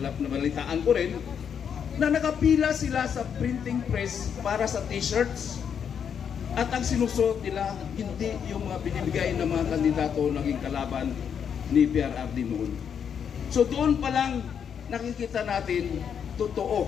ko rin, na nakapila sila sa printing press para sa t-shirts. At ang sinusuot nila, hindi yung mga binibigay ng mga kandidato naging kalaban ni PRRD noon. So doon pa lang nakikita natin,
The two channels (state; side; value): quieter; right; 7.7 dB